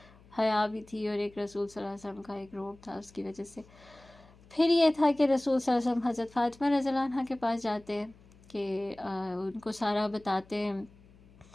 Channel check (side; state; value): left; noise; hum, 26 dB below the sound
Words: حیا بھی تھی اور ایک رسول صلی اللہ علیہ وسلم کا ایک روب تھا، اس کی وجہ سے. پھر یہ تھا کہ رسول صلی اللہ علیہ وسلم حضرت فاطمہ رضی اللہ عنہ کے پاس جاتے ہیں کہ ان کو سارا بتاتے